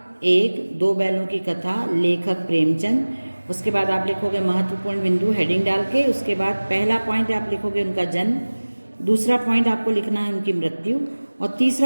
एक, दो बैलों की कथा, लेखक प्रेमचंद। उसके बाद आप लिखोगे महत्वपूर्ण बिंदु हेडिंग डाल के। उसके बाद पहला पॉइंट आप लिखोगे उनका जन्म, दूसरा पॉइंट आपको लिखना है उनकी मृत्यु और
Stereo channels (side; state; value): both; inverted; correlation -1.00